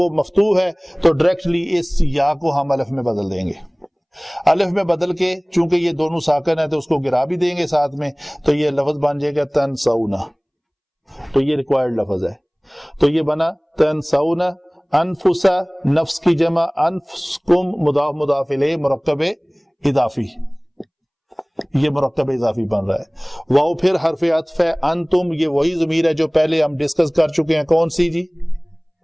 مفتوح ہے تو ڈائریکٹلی اس یا کو ہم الف میں بدل دیں گے. الف میں بدل کے چونکہ یہ دونوں ساکن ہے تو اس کو گرا بھی دیں گے ساتھ میں، تو یہ لفظ بن جائے گا تنسونا. تو یہ ریکوائرڈ لفظ ہے. تو یہ بنا تنسونا. انفسا نفس کی جمع، انفسکم مضاف مضاف الیہ مرکب اضافی، یہ مرکب اضافی بن رہا ہے. واو پھر حرف عطف ہے. انتم یہ وہی ضمیر ہے جو پہلے ہم ڈسکس کر چکے ہیں. کون سی جی؟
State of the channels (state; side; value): identical; both; correlation 1.00